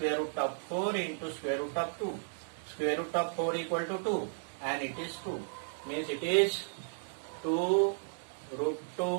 root of 4 into square root of 2. Square root of 4 equal to 2, and it is 2. Means it is 2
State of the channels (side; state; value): left; silent; digital silence